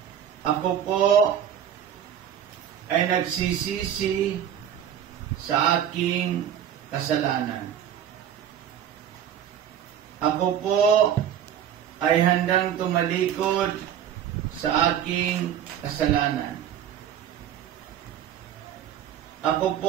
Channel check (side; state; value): left; quieter; 9.6 dB